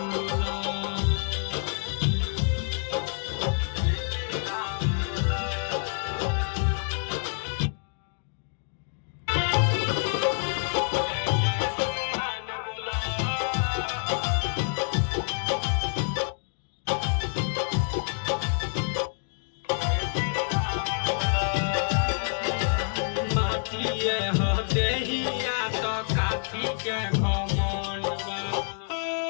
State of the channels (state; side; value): silent; right; digital silence